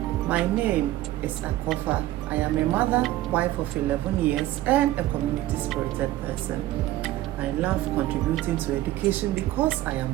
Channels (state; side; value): quieter; left; 15.2 dB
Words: My name is Akofa. I am a mother, wife of 11 years and a community-spirited person. I love contributing to education because I am